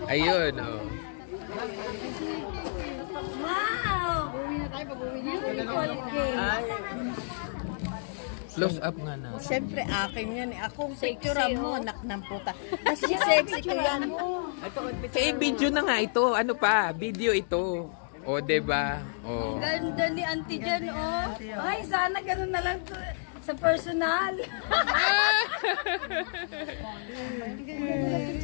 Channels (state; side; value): silent; right; digital silence